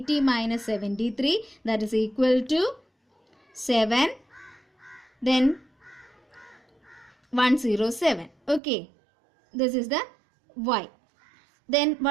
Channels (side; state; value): left; drops out; at 8.6 s